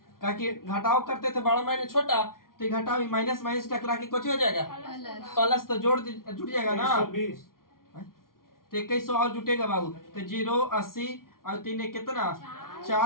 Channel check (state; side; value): late; right; 0.92 ms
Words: क्योंकि घटाव करते थे बड़ा माइनस छोटा, तो घटाव माइनस माइनस टकरा के कुछ हो जाएगा प्लस, तो जुट जाएगा ना। तो 2100 और जुटेगा बाबू। तो 0 80 और 3 कितना?